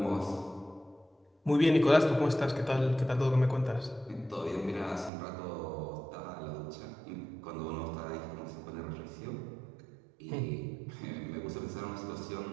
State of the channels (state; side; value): drops out; left; at 5.1 s